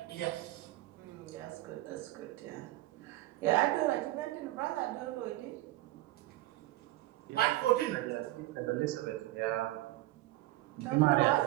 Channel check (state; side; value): quieter; left; 17.1 dB